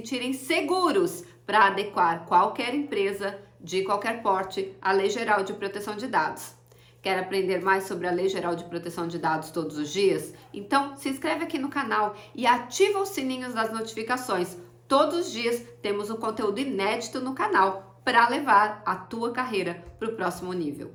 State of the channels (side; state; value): both; identical; correlation 1.00